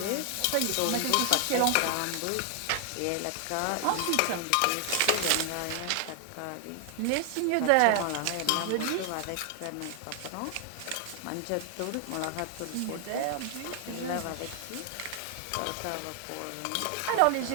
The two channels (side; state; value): both; different; correlation 0.00